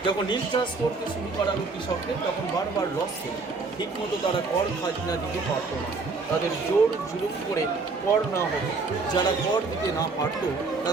যখন নীল চাষ করতে শুরু করালো কৃষকদের, তখন বারবার লস ছিল, ঠিকমতো তারা কর খাজনা দিতে পারতো না। তাদের জোর জুলুম করে কর না হতো। যারা কর দিতে না পারত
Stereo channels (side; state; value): left; quieter; 4.0 dB